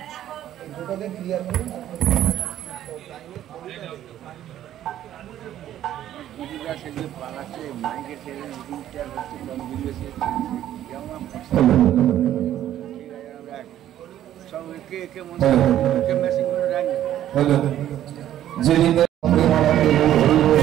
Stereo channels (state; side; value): quieter; left; 11.9 dB